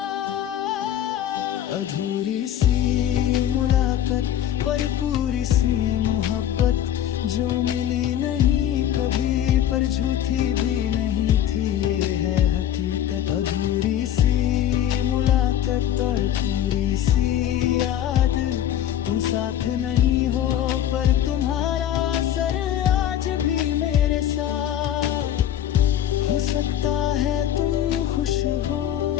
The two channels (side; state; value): right; quieter; 11.1 dB